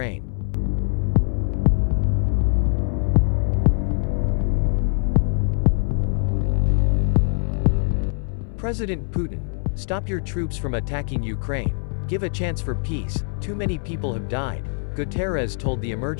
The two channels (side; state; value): right; silent; 62 dB below the other